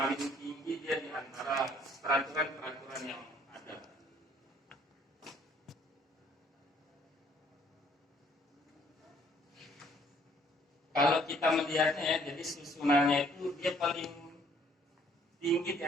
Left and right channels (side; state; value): both; normal; correlation 0.62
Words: tinggi dia di antara peraturan-peraturan yang ada. Kalau kita melihatnya ya, jadi susunannya itu dia paling tinggi di